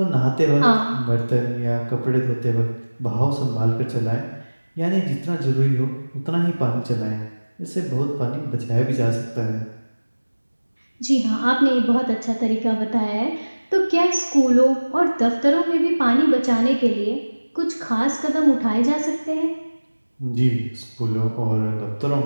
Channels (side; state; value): both; inverted; correlation -1.00